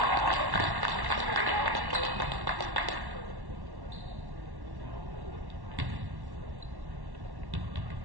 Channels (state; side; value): late; left; 1.1 ms